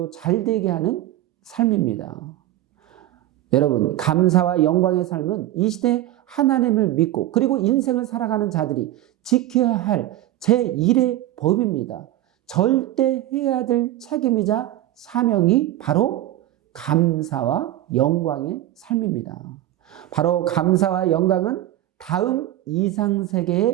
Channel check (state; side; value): quieter; left; 14.4 dB